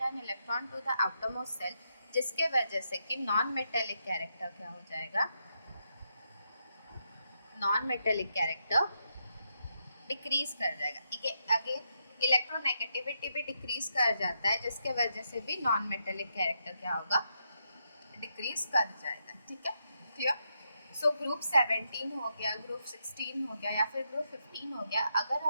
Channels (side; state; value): both; inverted; correlation -0.81